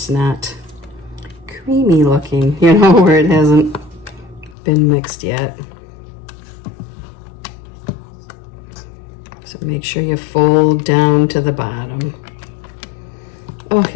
not creamy looking, you know, where it hasn't been mixed yet. So make sure you fold down to the bottom. Oh,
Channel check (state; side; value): drops out; right; at 4.5 s